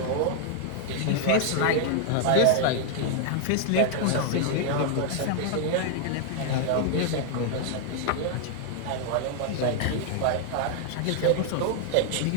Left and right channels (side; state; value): both; different; correlation 0.00